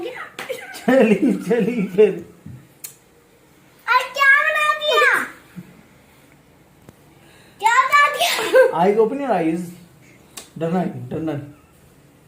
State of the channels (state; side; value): identical; both; correlation 1.00